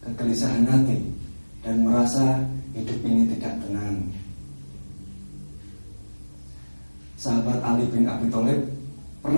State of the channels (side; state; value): both; inverted; correlation -1.00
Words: kegelisahan hati, dan merasa hidup ini tidak tenang. Sahabat Ali bin Abi Thalib